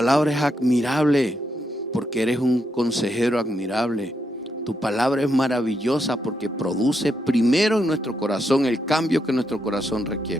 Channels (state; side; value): normal; both; correlation 0.81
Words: es admirable, porque eres un consejero admirable. Tu palabra es maravillosa porque produce primero en nuestro corazón el cambio que nuestro corazón